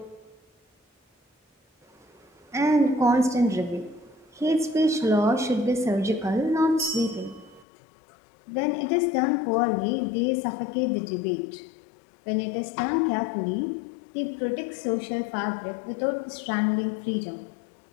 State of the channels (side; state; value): right; drops out; at 7.7 s